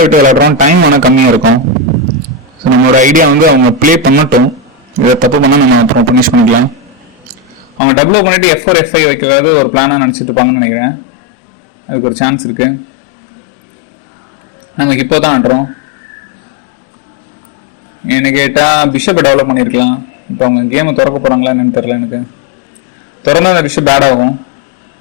விட்டு விளையாடுறோம், டைம் ஆனால் கம்மியாக இருக்கும். ஸோ நம்மளோட ஐடியா வந்து அவங்க ப்ளே பண்ணட்டும், இதை தப்பு பண்ணால் நம்ம அப்புறம் பனிஷ் பண்ணிக்கலாம். அவங்க டபுள் பண்ணிட்டு F4 F5 வைக்கிறதாவது ஒரு பிளானாக நினச்சிட்டு இருப்பாங்கன்னு நினைக்கிறேன். அதுக்கு ஒரு சான்ஸ் இருக்கு. நம்ம இப்போ தான் ஆடுறோம். என்ன கேட்டால் பிஷப்பை டெவலப் பண்ணியிருக்கலாம். இப்போ அவங்க கேமை திறக்க போகிறாங்களா என்னன்னு தெரியல எனக்கு. திறந்தா அந்த பிஷப் பேட் ஆகும்.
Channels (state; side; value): drops out; right; at 7.8 s